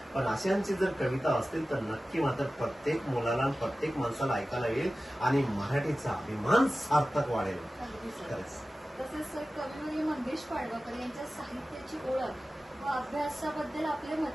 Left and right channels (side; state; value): both; normal; correlation 0.95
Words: पण अशांची जर कविता असतील तर नक्की मात्र प्रत्येक मुलाला, प्रत्येक माणसाला ऐकायला येईल आणि मराठीचा अभिमान सार्थक वाढेल. खरंच. तसेच सर कविवर्य मंगेश पाडवकर यांच्या साहित्याची ओळख व अभ्यासाबद्दल आपले मत